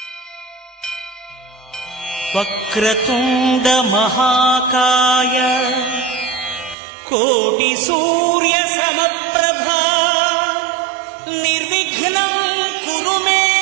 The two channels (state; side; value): drops out; left; at 6.8 s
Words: Vakratunda మహాకాయ కోటి సూర్య సమప్రభా నిర్విఘ్నం కురు మే